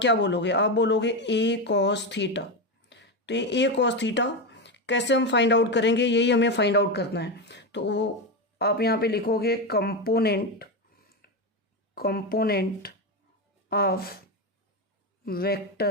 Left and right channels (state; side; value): normal; both; correlation 0.13